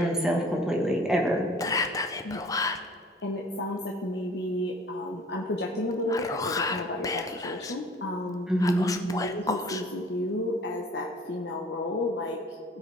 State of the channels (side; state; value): both; normal; correlation 0.49